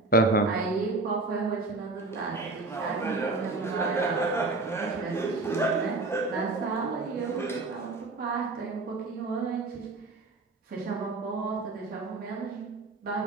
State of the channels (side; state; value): left; quieter; 3.4 dB